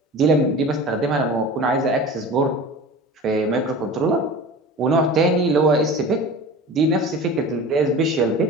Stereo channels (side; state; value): both; normal; correlation 0.36